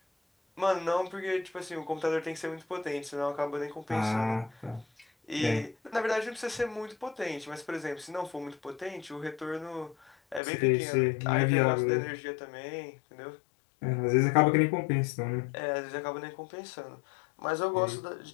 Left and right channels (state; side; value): drops out; right; at 10.4 s